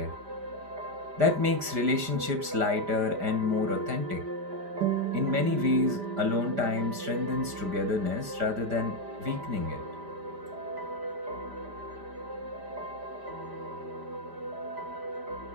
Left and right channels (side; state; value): left; late; 5.0 ms